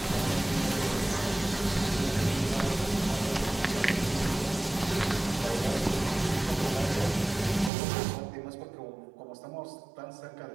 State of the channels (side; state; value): left; drops out; at 7.7 s